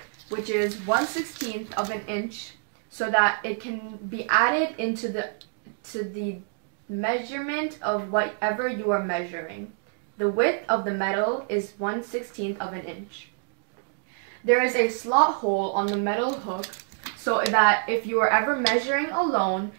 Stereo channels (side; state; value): left; silent; 60 dB below the other